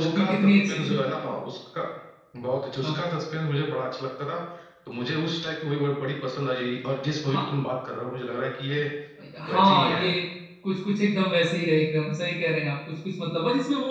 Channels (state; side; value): identical; both; correlation 1.00